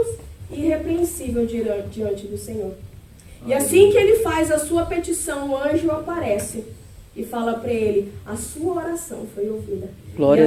e irrepreensíveis diante do Senhor. E assim que ele faz a sua petição, o anjo aparece e fala para ele: a sua oração foi ouvida. Glória e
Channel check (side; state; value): both; identical; correlation 1.00